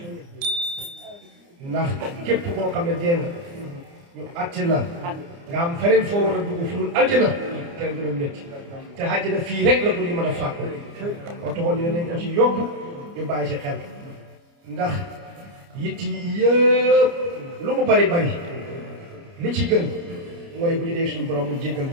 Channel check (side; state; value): left; late; 29 ms